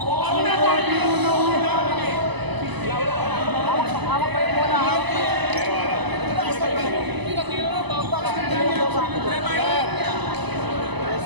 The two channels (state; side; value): late; left; 1.0 ms